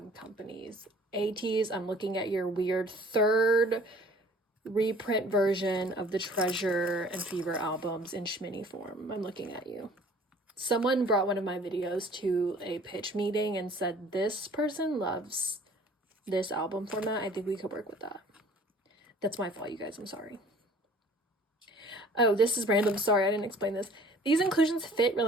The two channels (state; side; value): normal; both; correlation 0.52